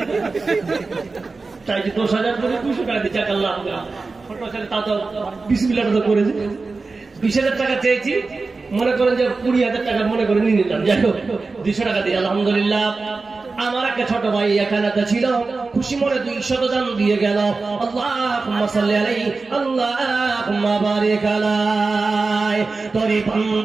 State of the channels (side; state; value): left; quieter; 3.9 dB